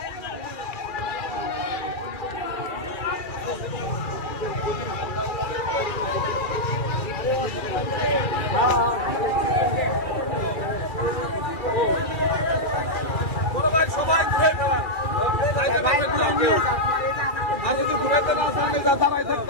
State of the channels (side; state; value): right; late; 2.4 ms